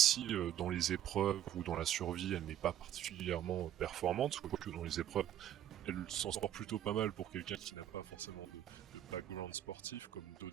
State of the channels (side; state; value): left; quieter; 11.1 dB